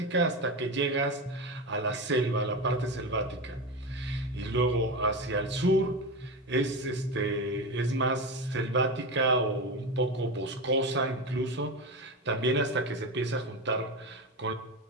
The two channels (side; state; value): both; normal; correlation 0.20